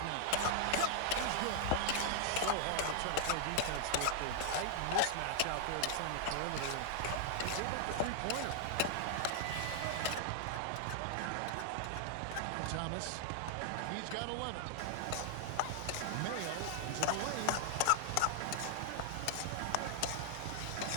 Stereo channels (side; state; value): both; different; correlation -0.01